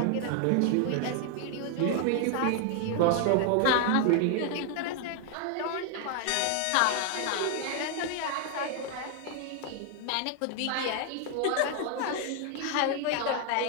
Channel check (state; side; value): different; both; correlation 0.00